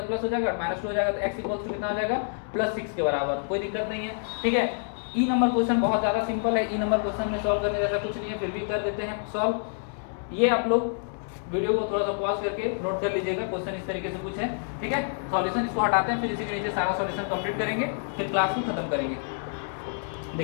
प्लस हो जाएगा, -2 हो जाएगा तो x = कितना हो जाएगा +6 के बराबर। कोई दिक्कत नहीं है, ठीक है। ई नंबर क्वेश्चन बहुत ज्यादा सिंपल है। ई नंबर क्वेश्चन में सॉल्व करने जैसा कुछ नहीं है, फिर भी कर देते हैं सॉल्व। ये आप लोग वीडियो को थोड़ा सा पॉज करके नोट कर लीजिएगा, क्वेश्चन इस तरीके से कुछ है, ठीक है। सॉल्यूशन इसको हटाते हैं, फिर इसी के नीचे सारा सॉल्यूशन कंप्लीट करेंगे, फिर क्लास में खत्म करेंगे।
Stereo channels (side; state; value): right; silent; digital silence